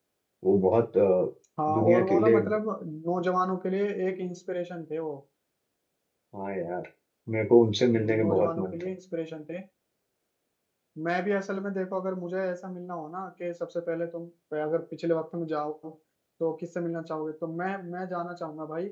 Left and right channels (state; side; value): identical; both; correlation 1.00